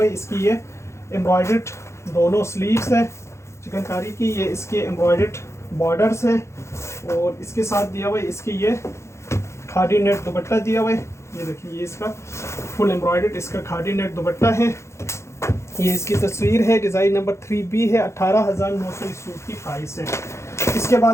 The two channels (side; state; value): right; late; 0.13 ms